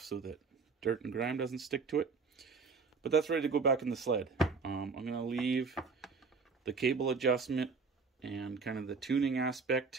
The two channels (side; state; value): left; quieter; 4.8 dB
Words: so that dirt and grime doesn't stick to it. But that's ready to go back in the sled. I'm going to leave the cable adjustment and kind of the tuning